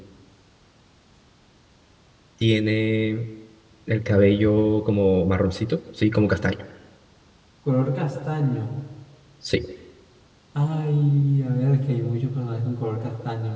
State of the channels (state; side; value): identical; both; correlation 1.00